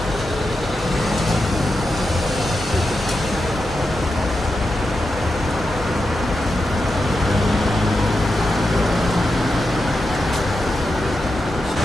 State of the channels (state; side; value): normal; both; correlation 0.88